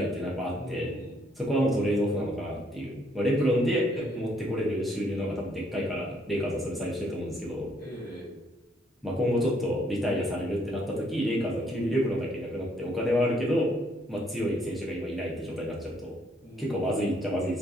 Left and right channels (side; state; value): both; normal; correlation 0.68